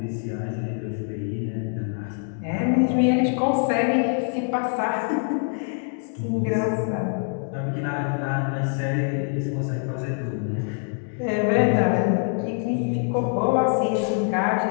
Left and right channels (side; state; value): right; silent; 55 dB below the other